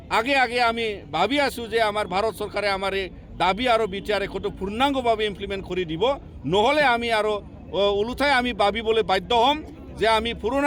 আগে আমি ভাবি আছোঁ যে আমাৰ ভাৰত চৰকাৰে আমাৰ এই দাবী আৰু বিটিআৰ ৰেকৰ্ডটো পূৰ্ণাংগভাৱে ইমপ্লিমেণ্ট কৰি দিব নহ'লে আমি আৰু ওলোটাই আমি ভাবিবলৈ বাধ্য হ'ম যে আমি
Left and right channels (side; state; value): both; identical; correlation 1.00